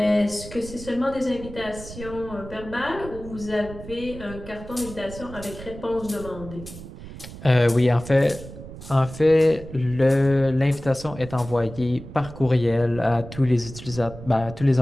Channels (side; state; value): right; noise; rumble, 14 dB below the sound